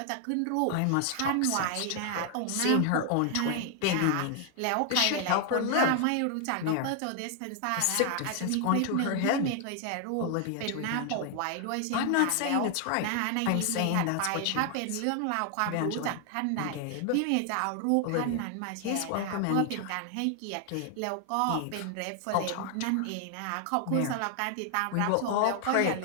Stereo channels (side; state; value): both; different; correlation 0.00